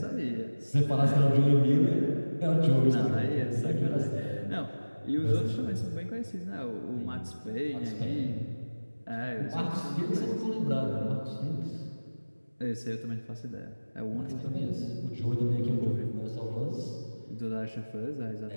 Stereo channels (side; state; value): both; inverted; correlation -1.00